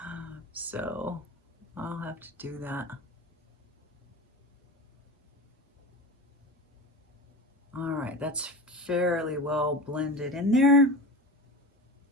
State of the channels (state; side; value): normal; both; correlation 0.29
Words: So I'll have to do that. All right, that's fairly well blended in there.